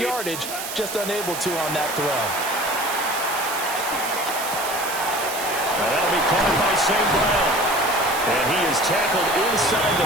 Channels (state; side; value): noise; right; hiss, 7 dB below the sound